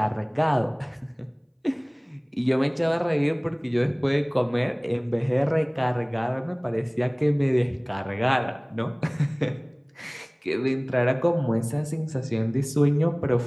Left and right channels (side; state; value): both; identical; correlation 1.00